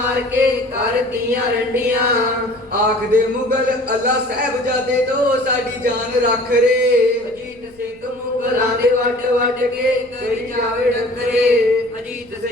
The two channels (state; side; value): noise; left; rumble, 30 dB below the sound